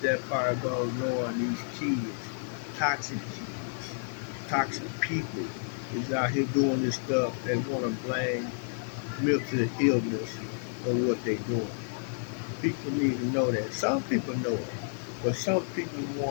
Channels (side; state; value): right; silent; digital silence